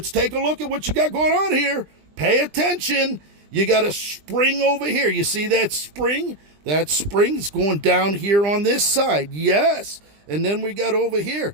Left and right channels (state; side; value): late; left; 20 ms